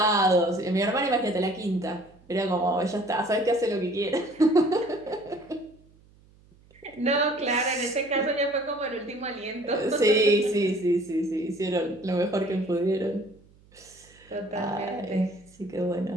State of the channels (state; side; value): noise; right; hum, 28 dB below the sound